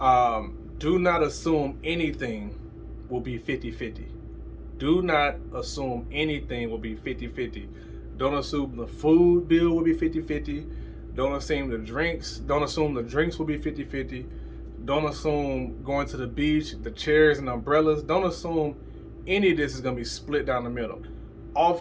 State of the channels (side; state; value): both; identical; correlation 1.00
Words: do not assume anything will be 50-50. Do not assume anything will be 50-50. Don't assume the food bill will be 50-50. Don't assume the drinks will be 50-50. Don't assume going to the beach, the chairs and umbrellas. Don't assume any of this is going to be split down the middle.